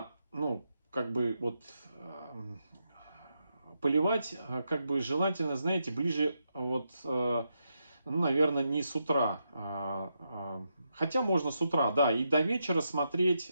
как бы вот поливать, как бы желательно, знаете, ближе вот, ну, наверное, не с утра, хотя можно с утра, да, и до вечера смотреть,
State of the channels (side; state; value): both; inverted; correlation -0.83